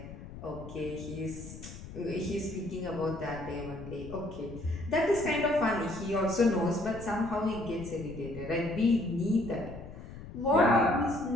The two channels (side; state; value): left; noise; rumble, 13 dB below the sound